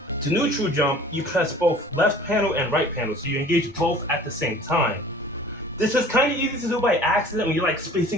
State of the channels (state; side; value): normal; both; correlation 0.47